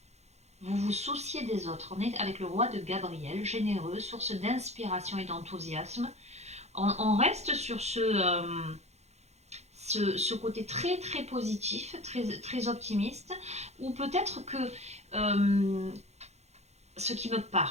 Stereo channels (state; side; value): late; left; 0.32 ms